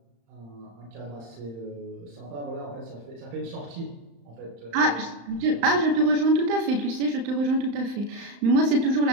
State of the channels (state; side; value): late; left; 35 ms